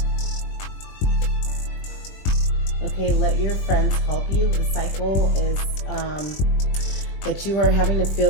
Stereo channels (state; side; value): late; right; 21 ms